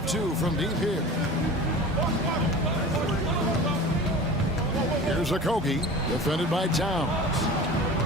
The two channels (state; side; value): normal; both; correlation 0.37